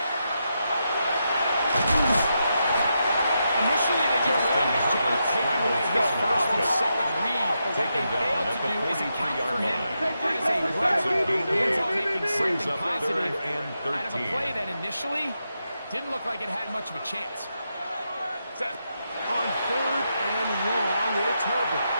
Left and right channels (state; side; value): inverted; both; correlation -0.85